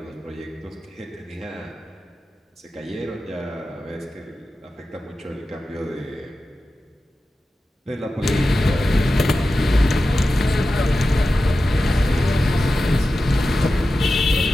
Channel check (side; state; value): both; normal; correlation 0.93